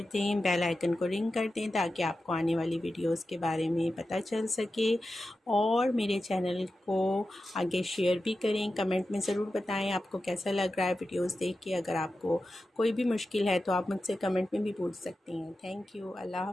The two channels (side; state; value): both; normal; correlation 0.92